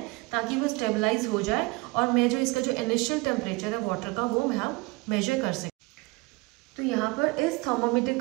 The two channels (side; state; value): left; quieter; 25.3 dB